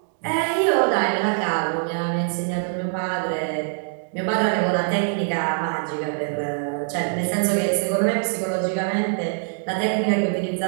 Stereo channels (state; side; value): silent; left; digital silence